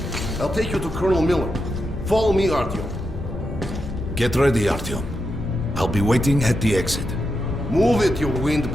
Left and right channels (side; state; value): left; noise; rumble, 9 dB below the sound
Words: I'll take you to Colonel Miller. Follow me, Artyom. Get ready, Artyom. I'll be waiting at the exit. Move it, you